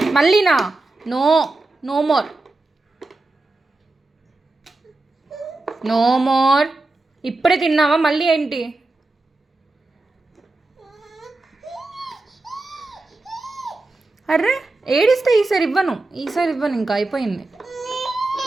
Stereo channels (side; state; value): left; quieter; 3.1 dB